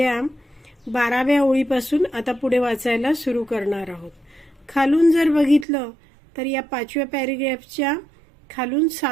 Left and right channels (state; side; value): drops out; left; at 5.7 s